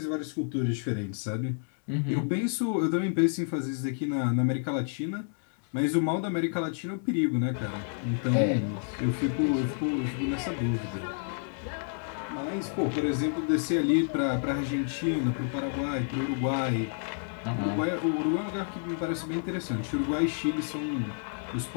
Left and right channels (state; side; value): silent; right; 58 dB below the other